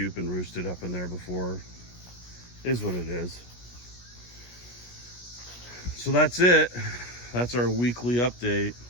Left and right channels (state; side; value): late; right; 17 ms